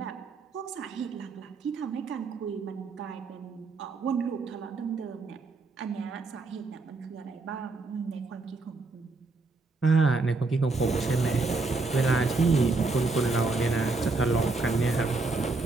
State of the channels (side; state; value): left; quieter; 3.7 dB